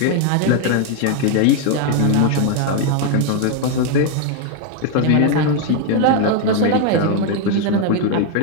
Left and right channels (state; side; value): different; both; correlation 0.01